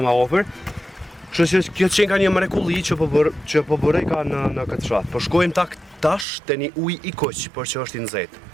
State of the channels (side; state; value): left; drops out; at 6.2 s